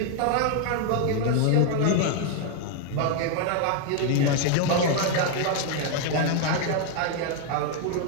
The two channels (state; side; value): different; both; correlation 0.01